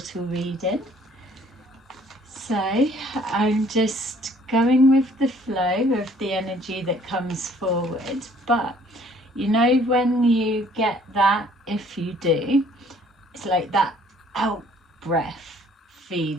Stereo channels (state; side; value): normal; both; correlation 0.58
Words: reading. So I'm just going with the flow of the energy that comes forward. But you know when you get that, if you do, it's like that out breath